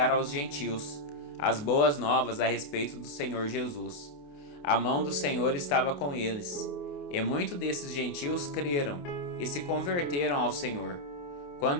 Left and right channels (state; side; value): late; right; 28 ms